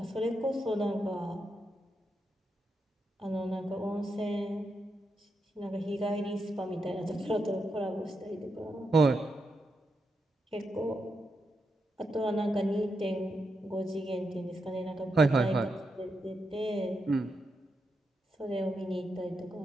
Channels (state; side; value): normal; both; correlation 0.84